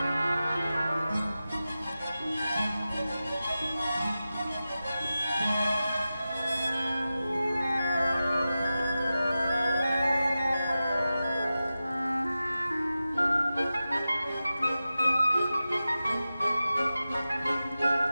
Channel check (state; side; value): inverted; both; correlation -0.94